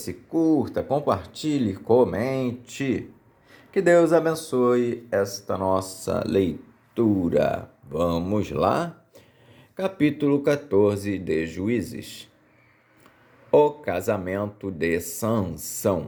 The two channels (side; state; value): both; identical; correlation 1.00